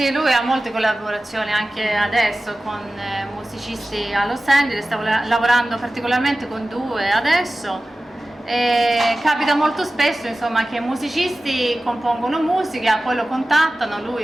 lui ha molte collaborazioni anche adesso con musicisti a Los Angeles, sta lavorando particolarmente con due adesso. E capita molto spesso, insomma, che musicisti compongono musica, poi lo contattano,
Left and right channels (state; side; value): normal; both; correlation 0.96